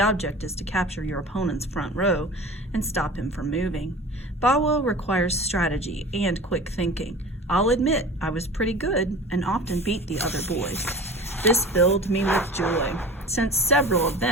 is to capture your opponent's front row and stop him from moving. Bawo requires strategy and quick thinking. I'll admit I was pretty good and often beat the other boys. This filled me with joy, since several of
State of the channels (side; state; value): both; normal; correlation 0.38